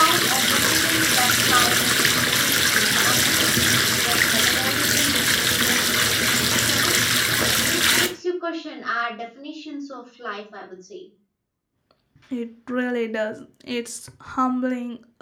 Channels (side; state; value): both; identical; correlation 1.00